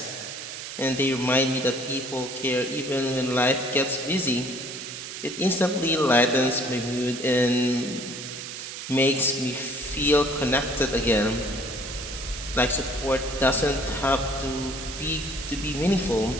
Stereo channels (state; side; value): noise; right; hiss, 9 dB below the sound